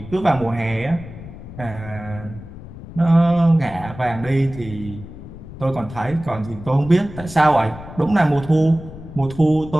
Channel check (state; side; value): noise; left; rumble, 14 dB below the sound